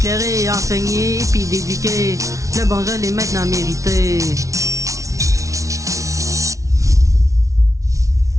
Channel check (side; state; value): left; late; 0.15 ms